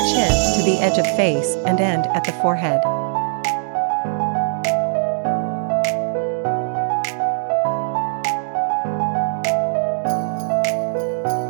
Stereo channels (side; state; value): left; silent; digital silence